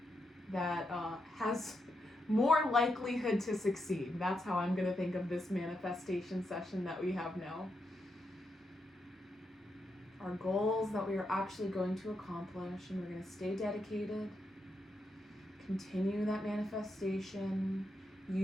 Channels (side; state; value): both; normal; correlation 0.83